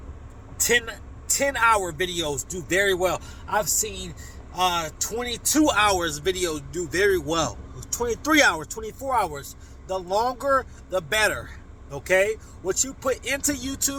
10-hour videos do very well. I've seen 22 hours videos do very well. 23 hours, 24 hours. The longer the better, okay? What you put into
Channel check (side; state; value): both; identical; correlation 1.00